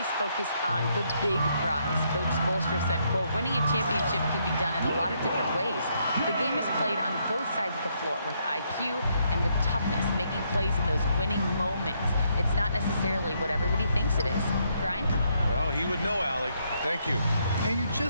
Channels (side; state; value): both; inverted; correlation -0.74